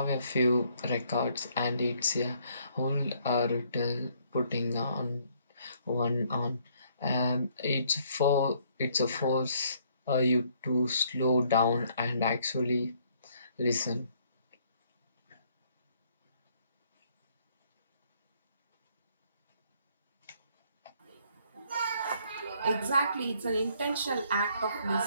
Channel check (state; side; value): inverted; both; correlation -0.66